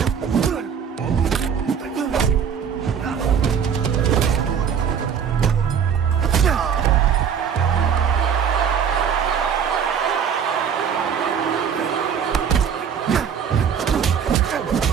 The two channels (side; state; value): left; quieter; 7.5 dB